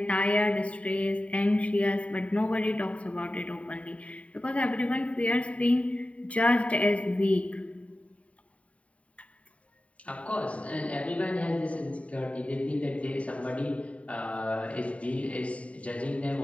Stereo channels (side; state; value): right; late; 0.065 ms